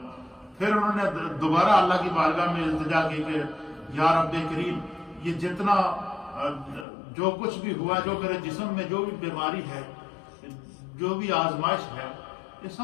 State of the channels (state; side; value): drops out; right; at 6.9 s